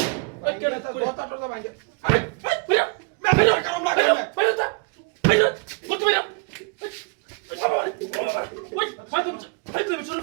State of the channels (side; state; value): left; quieter; 31.7 dB